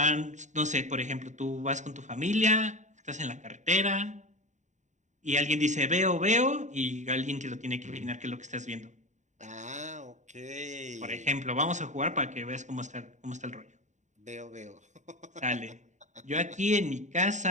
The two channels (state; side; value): late; left; 0.35 ms